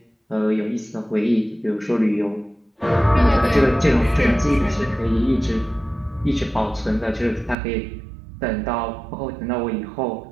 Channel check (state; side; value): drops out; left; at 7.6 s